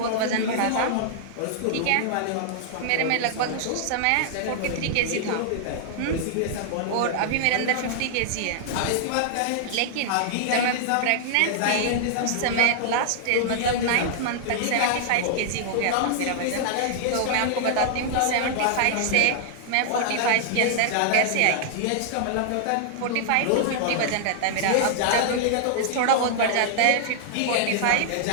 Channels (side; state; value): both; different; correlation -0.01